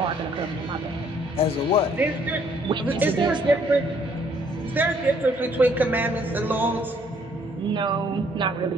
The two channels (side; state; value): both; normal; correlation 0.64